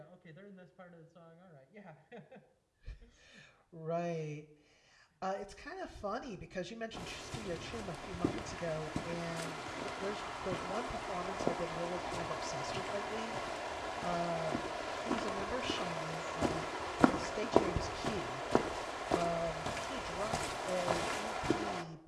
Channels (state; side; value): identical; both; correlation 1.00